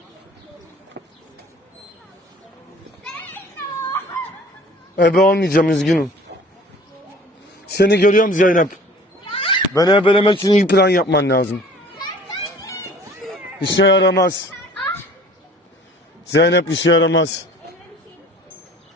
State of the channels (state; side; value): normal; both; correlation 0.49